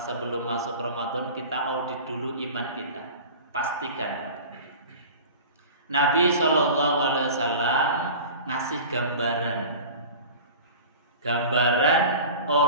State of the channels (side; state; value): both; inverted; correlation -0.37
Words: sebelum masuk Ramadan kita audit dulu iman kita, pastikan. Nabi SAW ngasih gambaran